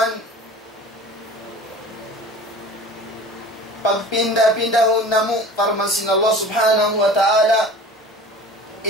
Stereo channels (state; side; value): normal; both; correlation 0.41